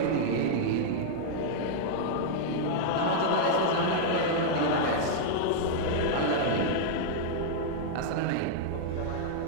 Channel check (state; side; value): different; both; correlation -0.01